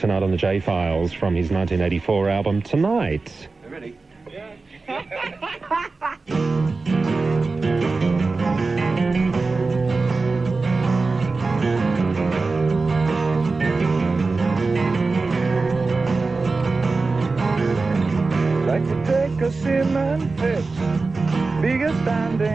on the J-Files from his 1984 album Tonight. Ready? Like to take a cement pit, biggest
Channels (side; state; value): left; quieter; 3.9 dB